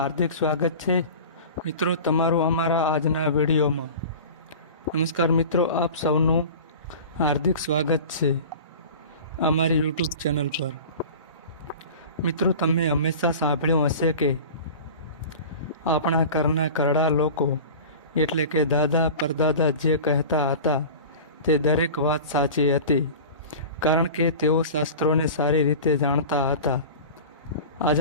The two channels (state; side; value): inverted; both; correlation -0.36